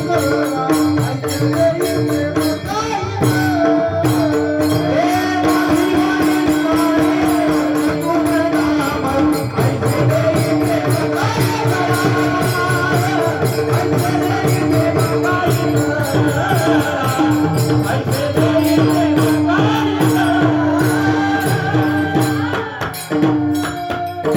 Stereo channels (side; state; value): both; identical; correlation 1.00